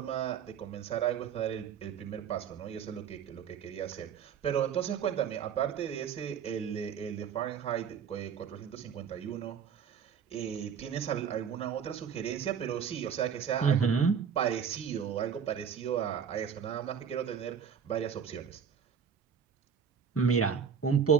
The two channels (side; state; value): left; quieter; 7.3 dB